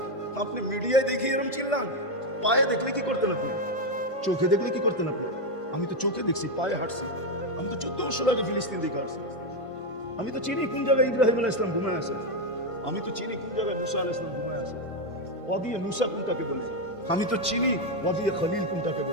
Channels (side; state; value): right; late; 1.5 ms